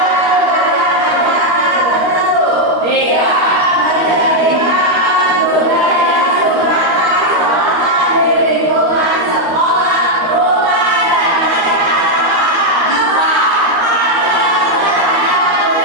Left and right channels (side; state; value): left; late; 13 ms